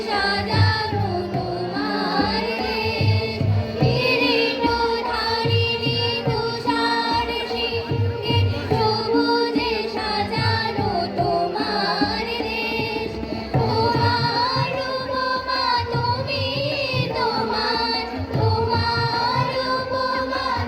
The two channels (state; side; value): identical; both; correlation 1.00